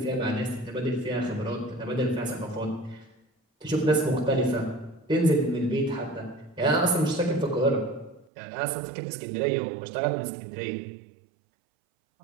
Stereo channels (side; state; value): left; drops out; at 8.2 s